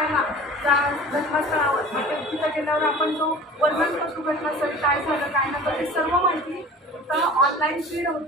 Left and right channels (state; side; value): normal; both; correlation 0.41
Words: त्या घटनास्थळावर तिथं गेल्यावर आपण जो वर्णन करतो घटनास्थळी काय झालं काय नाही ते सर्व माहिती इथं ऑनलाईन फीड